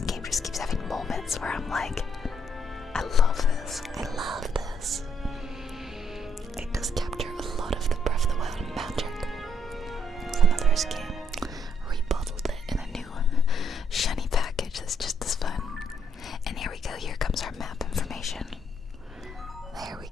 game just keeps having moments where I'm like, I love this. I love this. It does capture a lot of the Breath of the Wild magic from the first game. Rebottled it in a new shiny package that's just as fun. And here we go. Here comes our map information. There we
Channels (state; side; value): normal; both; correlation 0.71